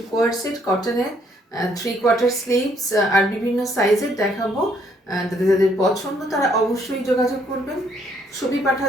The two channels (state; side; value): normal; both; correlation 0.68